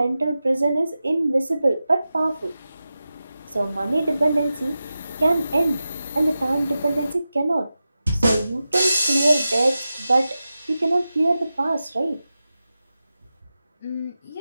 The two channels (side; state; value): both; inverted; correlation -0.93